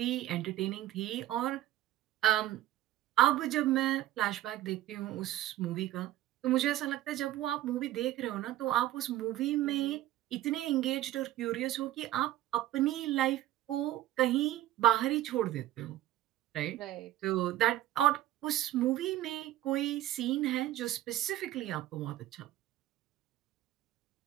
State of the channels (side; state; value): left; quieter; 14.0 dB